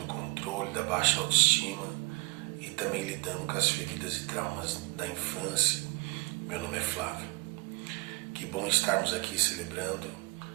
controle, da baixa autoestima e também lidando com as feridas e traumas da infância. Meu nome é Flávio. Que bom estarmos aqui celebrando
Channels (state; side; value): quieter; left; 25.7 dB